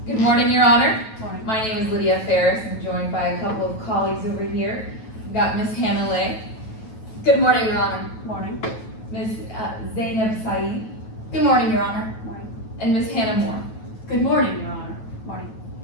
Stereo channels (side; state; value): right; late; 9.2 ms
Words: Good morning, Your Honor. Morning. My name is Lydia Ferris. I'm joined by a couple of colleagues over here. We've got Miss Hannah Lay. Good morning, Your Honor. Morning. Miss Zainab Saeed. Good morning, Your Honor. Morning. And Miss Hannah Moore. Good morning, Your Honor. Morning.